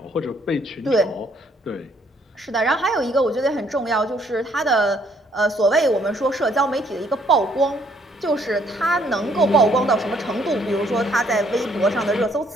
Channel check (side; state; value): both; normal; correlation 0.66